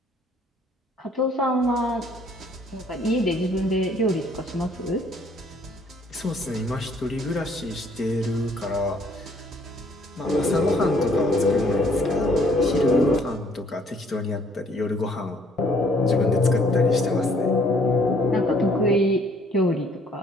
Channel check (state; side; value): normal; both; correlation 0.62